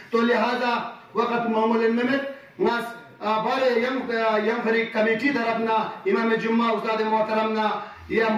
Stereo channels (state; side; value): identical; both; correlation 1.00